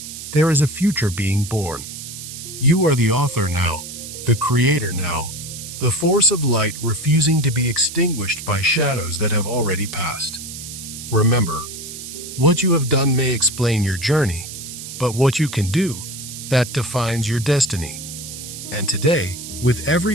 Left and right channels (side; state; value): right; noise; hiss, 10 dB below the sound